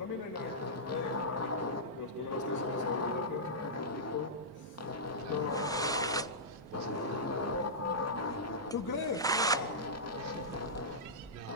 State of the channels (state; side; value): normal; both; correlation -0.15